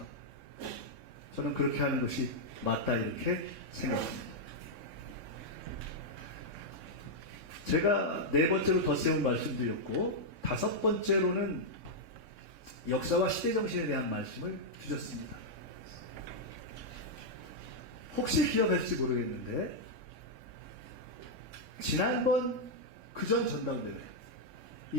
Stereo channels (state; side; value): late; left; 3.6 ms